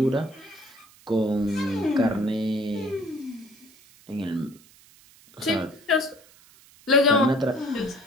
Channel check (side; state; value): right; noise; hiss, 26 dB below the sound